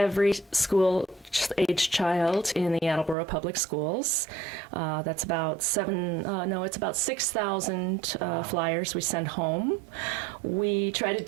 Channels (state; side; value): drops out; left; at 3.2 s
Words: school age child in the Attleboro Public Schools. That's about 6,000 flyers we send home. We try to